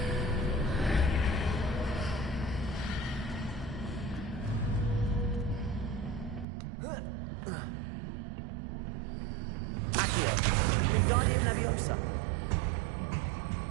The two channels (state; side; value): drops out; left; at 6.5 s